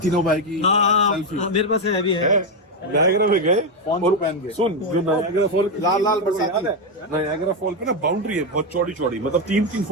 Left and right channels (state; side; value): normal; both; correlation 0.07